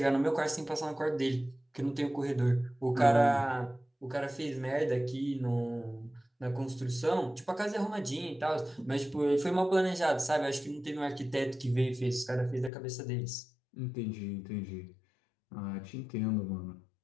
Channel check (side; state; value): right; drops out; at 12.7 s